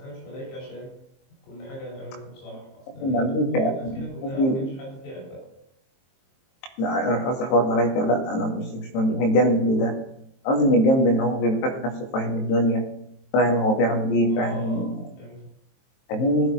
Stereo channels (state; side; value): late; right; 23 ms